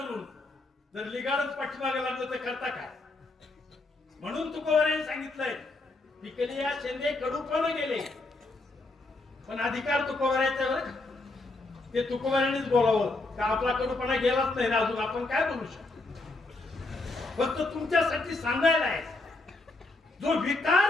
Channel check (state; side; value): quieter; right; 3.1 dB